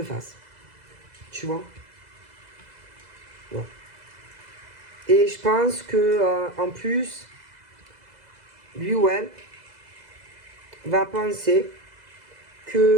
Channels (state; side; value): late; left; 2.0 ms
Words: fasse. Tu vois? Ouais. Et je pense que en plus, lui ou elle va penser